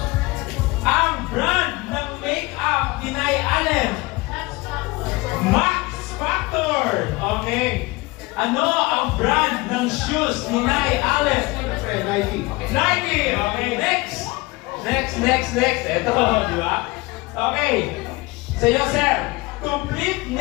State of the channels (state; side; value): quieter; right; 23.4 dB